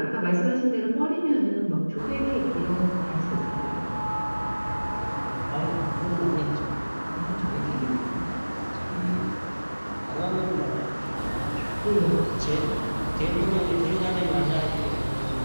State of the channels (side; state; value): both; inverted; correlation -1.00